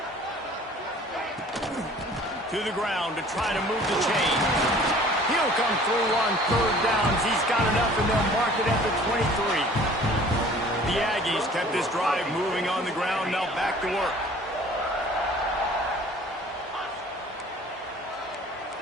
To the ground to try to move the chain. He'll come through on 3rd downs. He's got enough, and they'll mark it at the 23. The Aggies kept this drive moving on the ground. Now back to work.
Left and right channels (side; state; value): both; normal; correlation 0.50